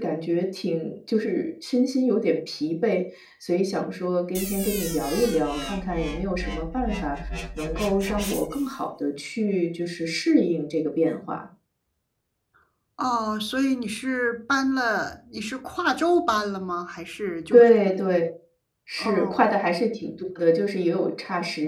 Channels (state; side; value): identical; both; correlation 1.00